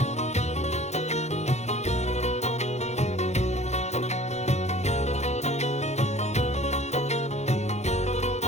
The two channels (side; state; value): right; late; 0.33 ms